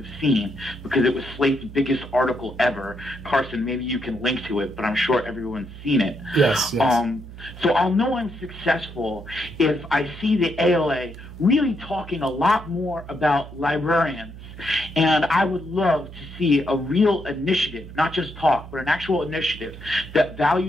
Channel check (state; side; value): noise; right; hum, 14 dB below the sound